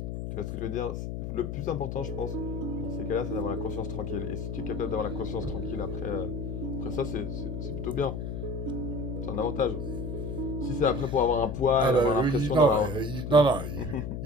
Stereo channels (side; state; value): left; noise; hum, 5 dB below the sound